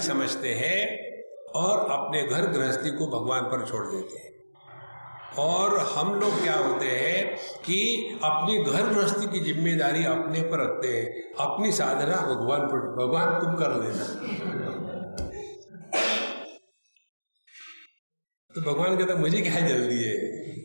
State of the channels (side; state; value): both; inverted; correlation -1.00